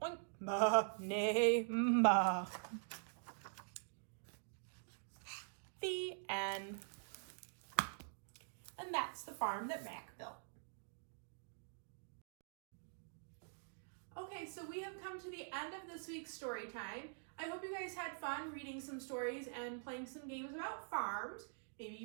oink, ma, neigh, ma. The end. And that's the farm that Mac built. Okay, so we have come to the end of this week's story time. I hope you guys had fun reading some stories and playing some games about farms. Maybe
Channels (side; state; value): left; silent; digital silence